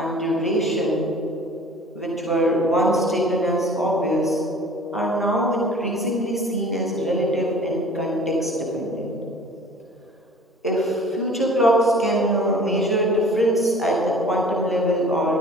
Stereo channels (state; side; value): normal; both; correlation 0.48